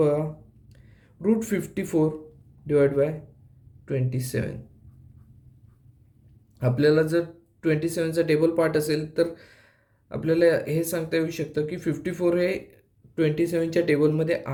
√54 डिवाइड बाय 27. आपल्याला जर 27चा टेबल पार्ट असेल तर आपल्याला हे सांगता येऊ शकतं की 54 हे 27च्या टेबलमध्ये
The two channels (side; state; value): both; identical; correlation 1.00